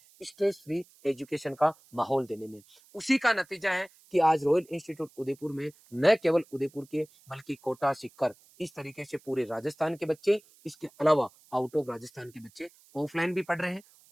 स्ट्रेस फ्री एजुकेशन का माहौल देने में। उसी का नतीजा है कि आज रॉयल इंस्टीट्यूट उदयपुर में न केवल उदयपुर के बल्कि कोटा, सीकर, इस तरीके से पूरे राजस्थान के बच्चे, इसके अलावा आउट ऑफ राजस्थान के बच्चे ऑफलाइन भी पढ़ रहे हैं,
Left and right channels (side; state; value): right; noise; hiss, 28 dB below the sound